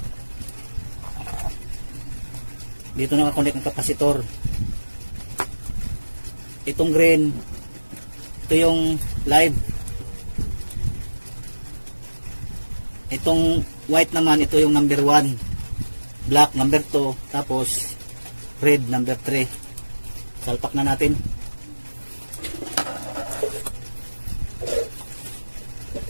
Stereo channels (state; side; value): inverted; both; correlation -1.00